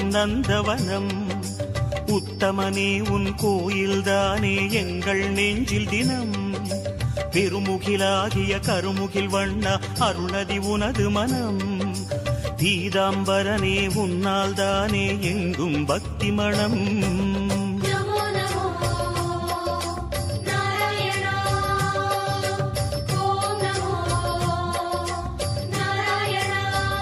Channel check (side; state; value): both; identical; correlation 1.00